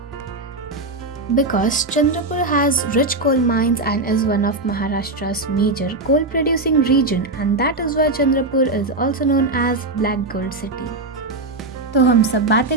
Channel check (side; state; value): left; quieter; 3.0 dB